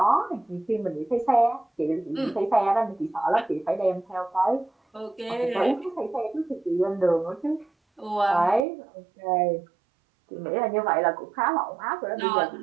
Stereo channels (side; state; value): left; drops out; at 8.7 s